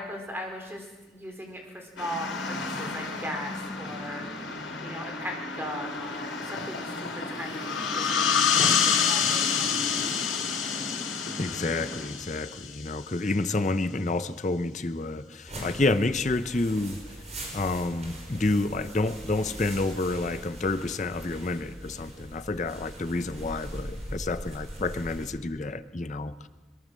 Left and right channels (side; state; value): right; quieter; 3.5 dB